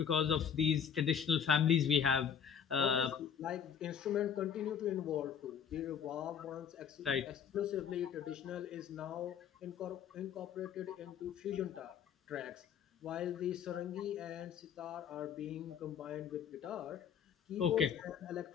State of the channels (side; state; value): right; quieter; 7.9 dB